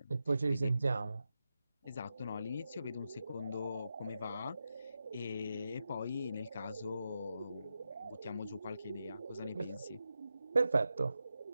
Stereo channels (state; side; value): inverted; both; correlation -0.88